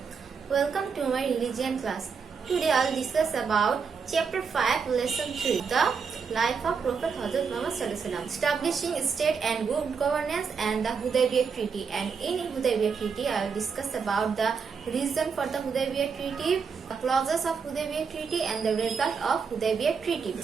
Welcome to my religion class. Today I will discuss about chapter 5 lesson 3, the life of Prophet Hazrat Muhammad Sallallahu Alaihi Wasallam, establishing state and good governance and the Hudaybiyah Treaty. And in Hudaybiyah Treaty I will discuss about the reason for the Hudaybiyah Treaty, the clauses of Hudaybiyah Treaty and the result of Hudaybiyah Treaty.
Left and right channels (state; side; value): quieter; left; 5.8 dB